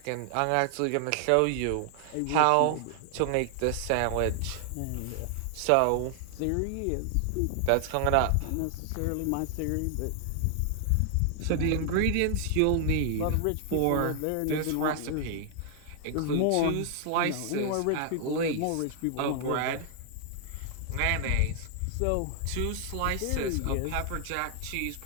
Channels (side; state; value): both; different; correlation 0.00